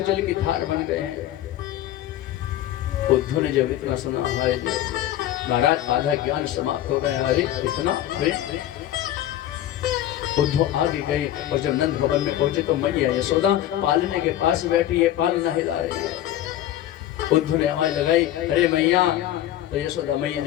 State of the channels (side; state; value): right; quieter; 12.8 dB